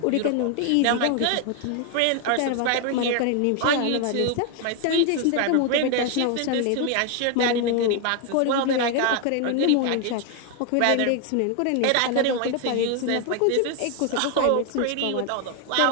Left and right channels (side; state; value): both; different; correlation 0.01